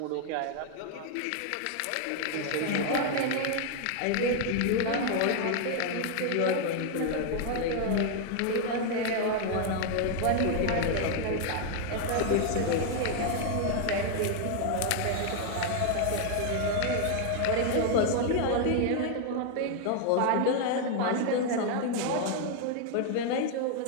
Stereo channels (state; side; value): different; both; correlation 0.00